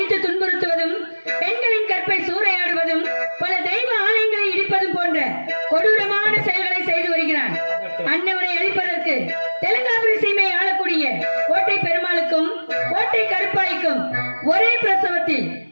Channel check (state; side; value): inverted; both; correlation -1.00